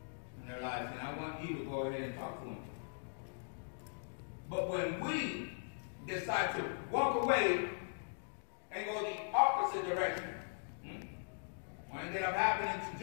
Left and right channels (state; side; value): silent; right; digital silence